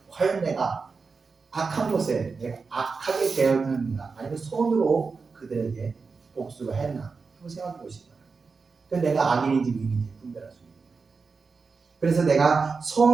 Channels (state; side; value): quieter; left; 4.7 dB